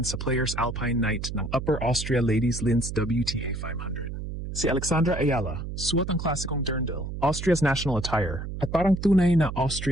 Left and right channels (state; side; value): noise; right; hum, 7 dB below the sound